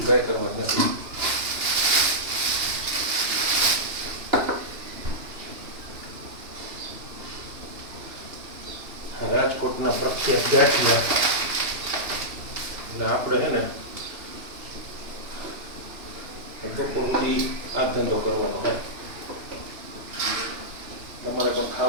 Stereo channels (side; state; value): left; late; 3.0 ms